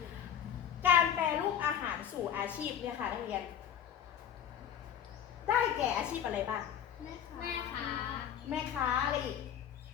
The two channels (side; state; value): right; quieter; 9.3 dB